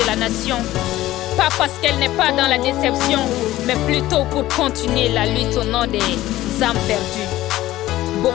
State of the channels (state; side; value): quieter; right; 15.6 dB